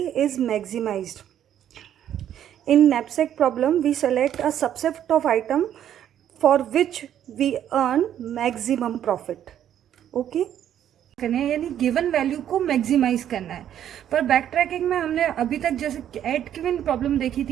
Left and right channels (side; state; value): left; quieter; 10.4 dB